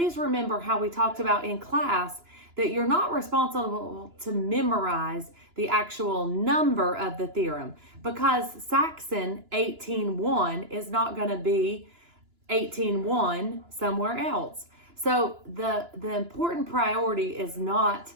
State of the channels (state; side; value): late; left; 2.9 ms